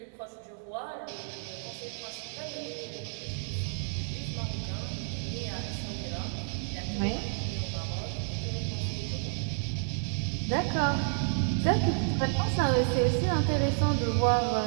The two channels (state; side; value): silent; left; digital silence